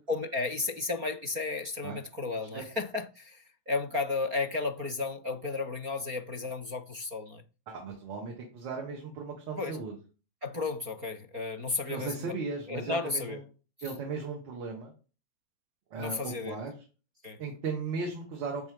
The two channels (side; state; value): left; late; 4.3 ms